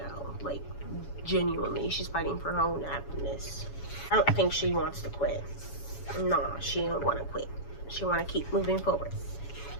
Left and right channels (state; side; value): late; right; 7.1 ms